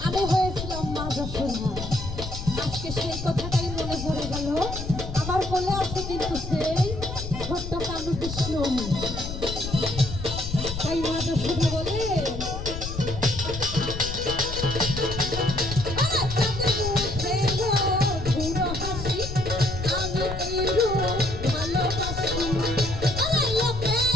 আমি হয়েছিলাম মা যশোদা। আজকে সেই কথাটাই মনে পড়ে গেল। আমার কোলে আছে কিন্তু সেই ছোট্ট কালু কৃষ্ণ। তাই মা যশোদা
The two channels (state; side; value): noise; left; rumble, 7 dB below the sound